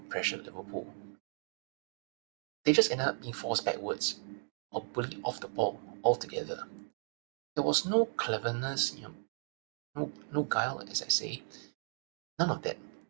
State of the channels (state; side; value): silent; left; 54 dB below the other